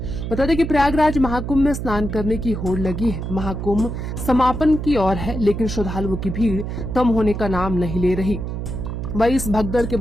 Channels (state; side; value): noise; right; hum, 5 dB below the sound